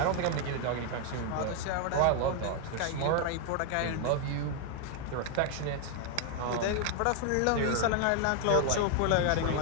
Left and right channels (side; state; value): both; different; correlation 0.00